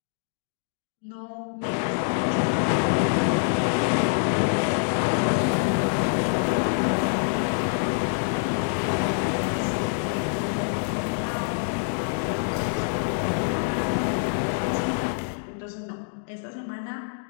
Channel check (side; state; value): right; silent; digital silence